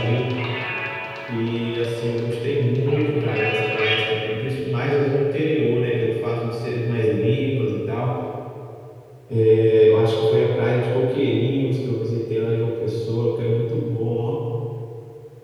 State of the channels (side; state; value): both; identical; correlation 1.00